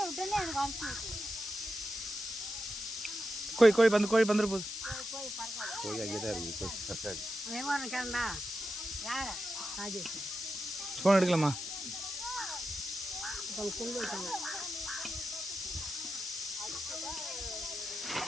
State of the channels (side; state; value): left; noise; hiss, 5 dB below the sound